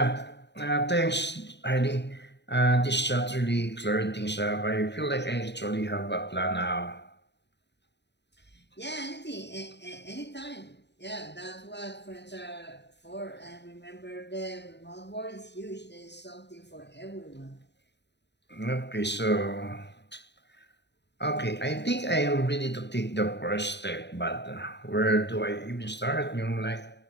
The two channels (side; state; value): right; late; 0.50 ms